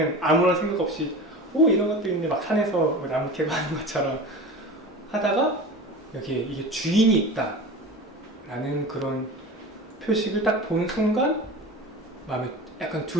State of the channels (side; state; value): both; normal; correlation 0.33